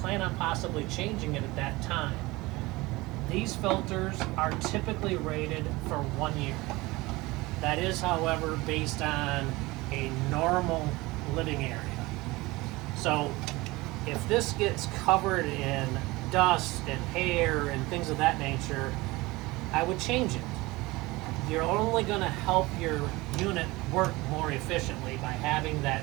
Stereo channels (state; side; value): quieter; left; 21.4 dB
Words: on possibly changing it at that time. These filters are typically rated for 1 year. That is, however, based on a normal living area. So if this gets covered in dust and hair and things of that nature, I would change it. You're only going to help your unit work more efficiently by having that